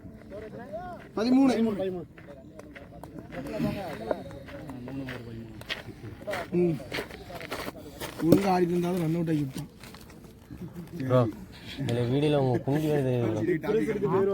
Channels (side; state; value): both; identical; correlation 1.00